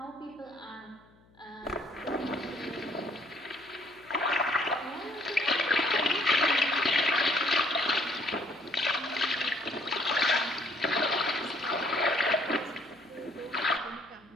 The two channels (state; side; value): noise; left; hum, 30 dB below the sound